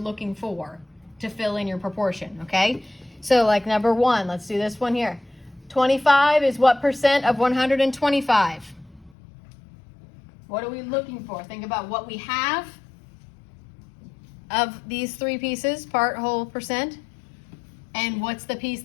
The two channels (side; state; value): right; drops out; at 9.2 s